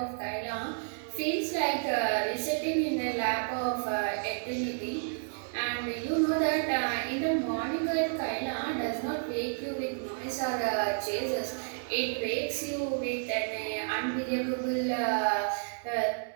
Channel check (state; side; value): silent; left; 57 dB below the other